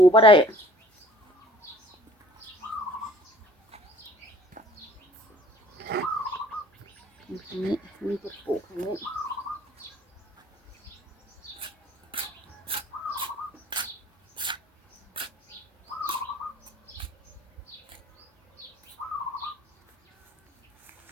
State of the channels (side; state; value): both; normal; correlation 0.53